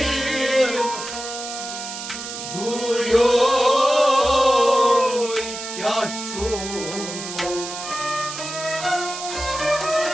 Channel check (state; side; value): noise; right; hiss, 8 dB below the sound